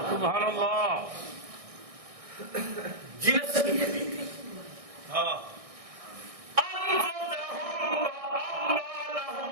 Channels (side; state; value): left; late; 1.6 ms